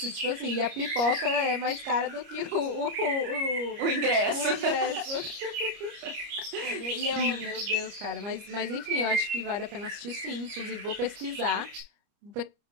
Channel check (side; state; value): left; late; 30 ms